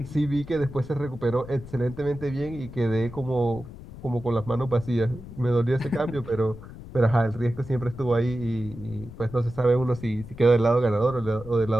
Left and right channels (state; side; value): noise; left; rumble, 15 dB below the sound